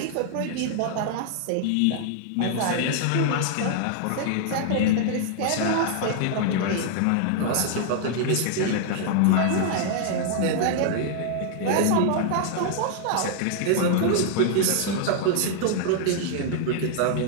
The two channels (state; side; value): different; both; correlation -0.01